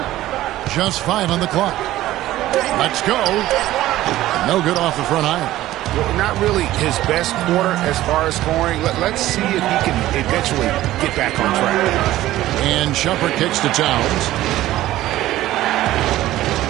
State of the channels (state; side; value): quieter; left; 15.1 dB